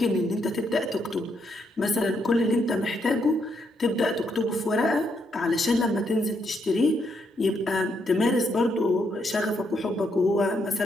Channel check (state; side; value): normal; both; correlation 0.77